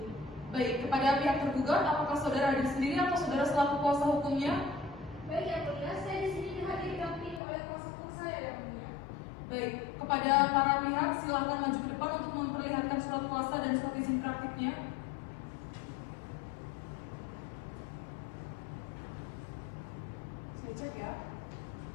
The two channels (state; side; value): drops out; right; at 7.4 s